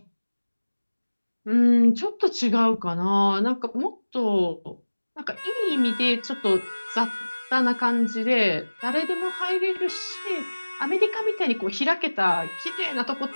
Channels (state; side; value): inverted; both; correlation -1.00